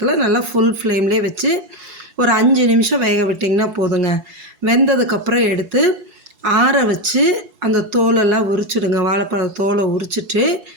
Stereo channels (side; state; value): left; late; 4.7 ms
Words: நல்லா ஃபுல் ஃப்ளேம்லேயே வச்சு ஒரு 5 நிமிஷம் வேக விட்டிங்கன்னா போதுங்க. வெந்ததுக்கப்புறம் எடுத்து ஆற வச்சு அந்த தோலெல்லாம் உரிச்சிடுங்க. வாழைப்பழ தோலை உரிச்சிட்டு